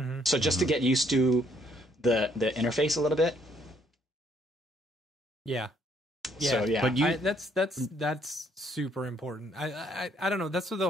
So just to get used to the interface a little bit. Yeah. So yeah, but that's super important. I don't know. That's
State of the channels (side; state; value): both; normal; correlation 0.67